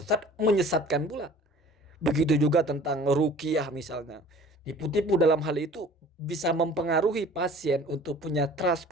menyesatkan pula. Begitu juga tentang ruqyah misalnya. Tipu-tipu dalam hal itu bisa mempengaruhi pasien untuk punya trust,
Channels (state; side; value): normal; both; correlation 0.47